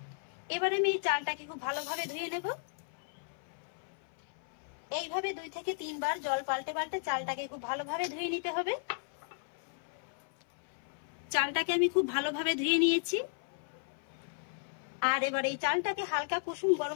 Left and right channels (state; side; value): silent; right; 55 dB below the other